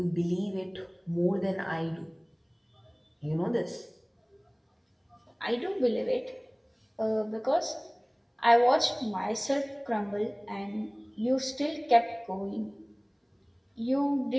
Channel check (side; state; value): both; identical; correlation 1.00